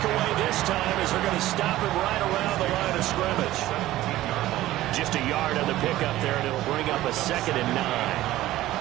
away this time as they're going to stop him right around the line of scrimmage. Just a yard on the pickup there, and it'll bring up a 2nd and 9.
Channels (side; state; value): left; quieter; 15.5 dB